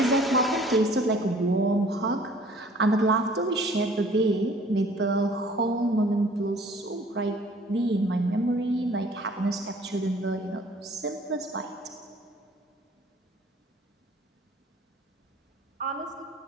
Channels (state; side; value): normal; both; correlation 0.53